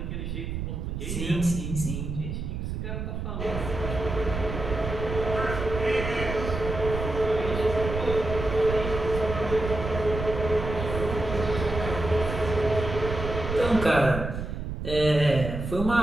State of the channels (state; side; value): noise; right; rumble, 5 dB below the sound